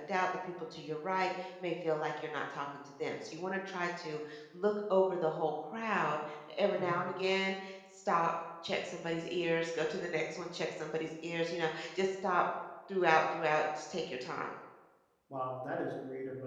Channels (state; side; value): identical; both; correlation 1.00